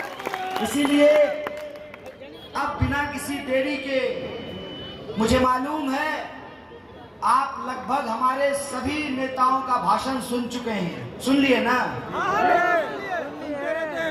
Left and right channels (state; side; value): identical; both; correlation 1.00